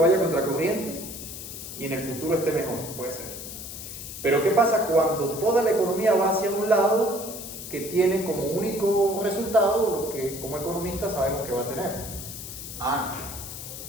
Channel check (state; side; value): noise; left; hiss, 10 dB below the sound